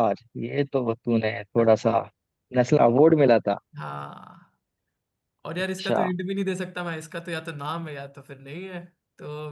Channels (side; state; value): both; identical; correlation 1.00